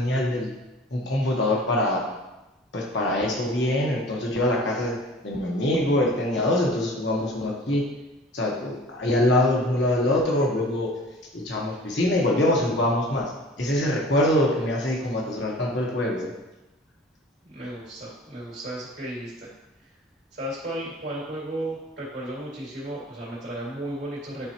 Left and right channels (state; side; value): normal; both; correlation 0.44